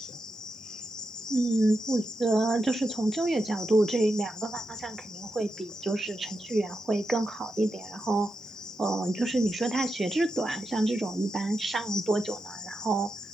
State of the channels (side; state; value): both; normal; correlation 0.87